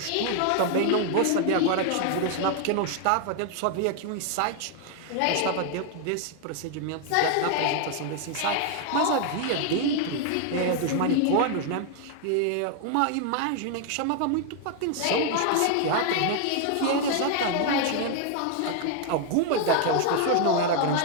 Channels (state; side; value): different; both; correlation 0.00